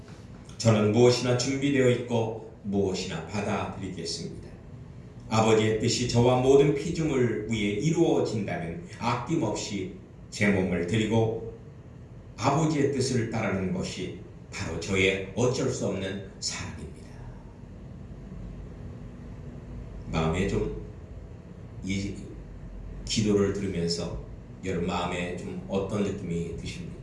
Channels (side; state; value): both; identical; correlation 1.00